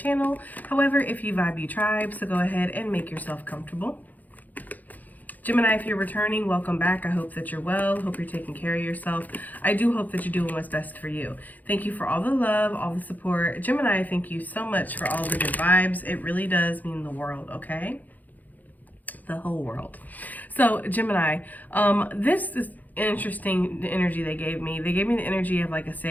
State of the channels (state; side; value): late; right; 0.082 ms